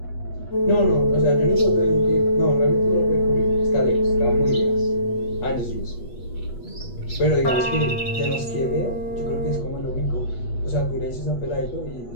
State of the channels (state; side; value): late; right; 8.2 ms